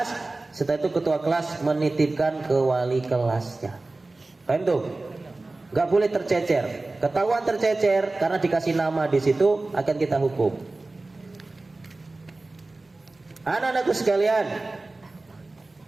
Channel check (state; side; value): quieter; left; 3.2 dB